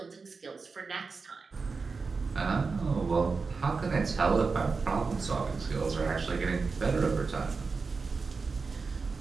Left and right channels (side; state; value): left; quieter; 4.6 dB